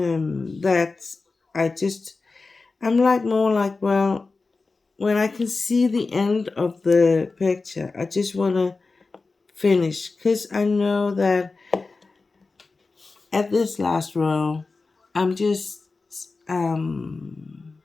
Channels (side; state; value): right; quieter; 3.9 dB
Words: that I'm like more like, well, when I can see the end of the picture, I just want to finish, because I know that at this last row, I'm just um